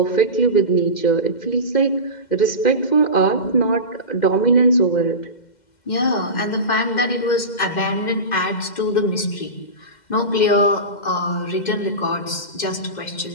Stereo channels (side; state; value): right; late; 2.1 ms